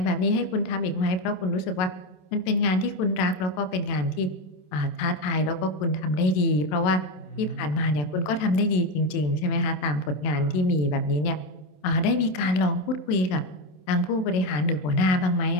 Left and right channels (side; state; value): right; late; 27 ms